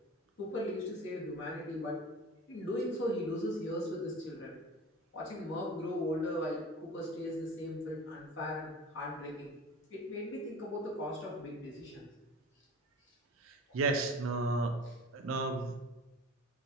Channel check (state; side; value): normal; both; correlation 0.38